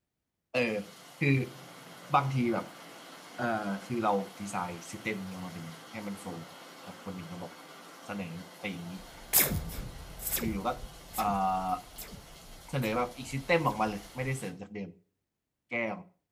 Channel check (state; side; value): identical; both; correlation 1.00